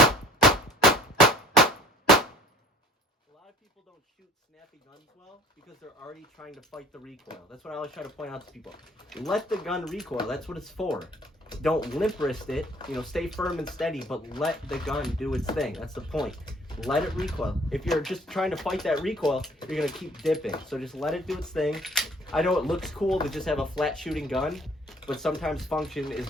A lot of people don't shoot snappy guns well because they're already trying to fight the recoil. That's what I always try to point out to people. Let the gun recoil. That's what it's for. Don't limp wrist it. Stay firm and steady, but let the gun do its thing. That's the point. Let it recoil. If you're just trying to fight that recoil, you're going to keep dipping. So just let it do its thing. I know it looks cool to just have a flat shooting gun, but sometimes function is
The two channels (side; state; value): both; normal; correlation 0.52